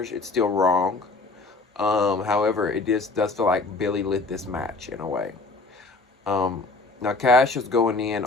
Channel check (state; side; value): quieter; right; 3.4 dB